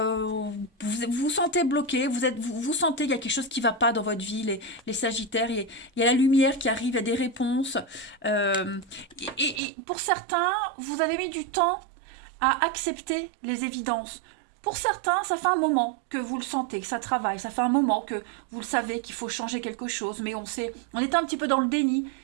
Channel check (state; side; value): drops out; left; at 9.6 s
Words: vous sentez bloqué. Vous sentez qu'il y a quelque chose qui va pas dans votre vie. Les Sagittaires, il y a la lumière qui arrive, il y a des réponses. Et pour certains, vous avez mis du temps à accepter les évidences. Pour certains, ça fait un moment que vous le sentez, que ça travaille. Ça fait un moment que vous le savez qu'il faut changer quelque chose. Mais on était un petit peu dans le déni.